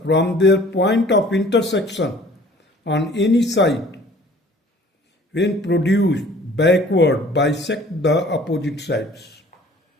from their point of intersection on any side when produced backward bisect the opposite sides.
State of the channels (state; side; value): normal; both; correlation 0.52